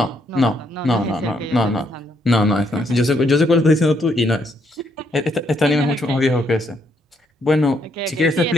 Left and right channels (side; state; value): both; normal; correlation 0.74